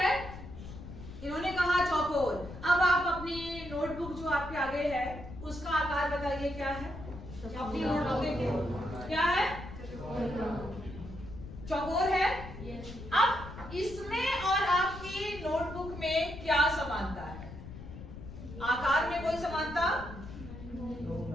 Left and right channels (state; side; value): noise; left; rumble, 12 dB below the sound